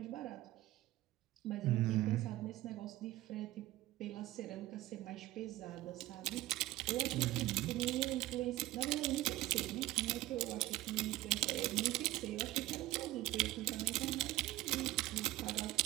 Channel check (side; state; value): left; quieter; 16.8 dB